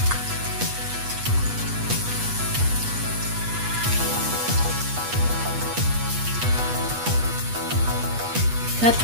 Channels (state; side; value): late; left; 8.2 ms